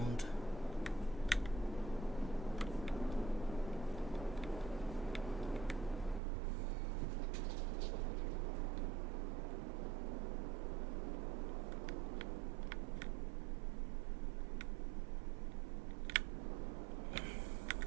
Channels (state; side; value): drops out; left; at 6.2 s